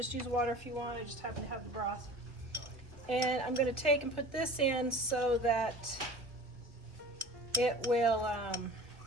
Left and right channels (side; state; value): left; late; 1.6 ms